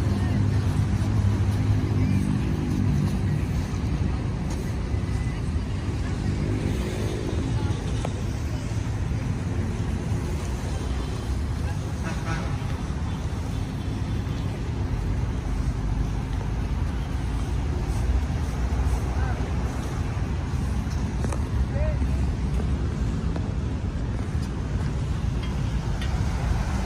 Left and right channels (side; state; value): both; identical; correlation 1.00